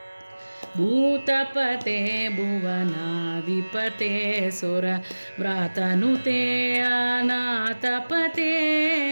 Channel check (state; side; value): inverted; both; correlation -1.00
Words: भूतपते भुवनाधिपते सुर व्रातनुते अनाथपते